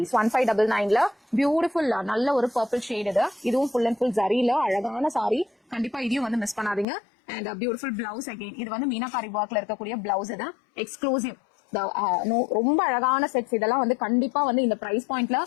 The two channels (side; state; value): right; drops out; at 6.9 s